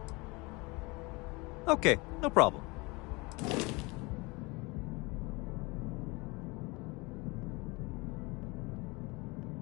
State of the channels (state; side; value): quieter; right; 25.8 dB